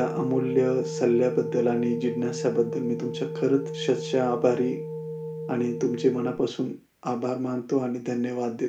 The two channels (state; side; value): identical; both; correlation 1.00